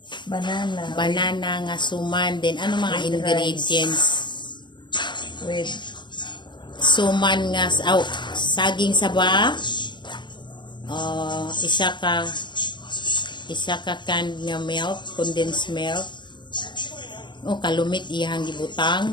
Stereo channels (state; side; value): late; right; 0.22 ms